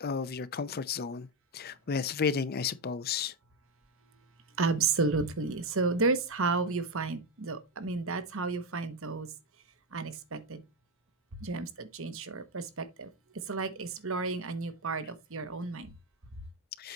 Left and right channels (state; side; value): normal; both; correlation 0.09